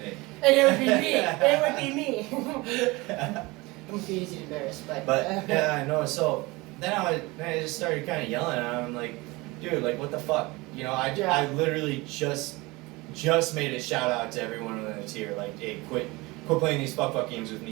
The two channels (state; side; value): quieter; left; 23.0 dB